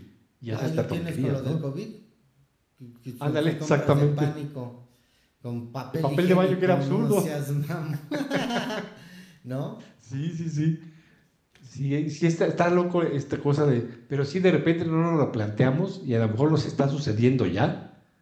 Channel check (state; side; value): identical; both; correlation 1.00